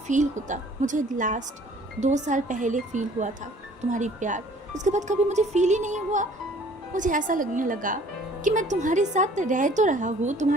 होता। मुझे लास्ट 2 साल पहले फील हुआ था तुम्हारी प्यार, उसके बाद कभी मुझे फील ही नहीं हुआ। मुझे ऐसा लगने लगा कि मैं तुम्हारे साथ रह तो रहा हूँ,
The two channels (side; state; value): both; normal; correlation 0.54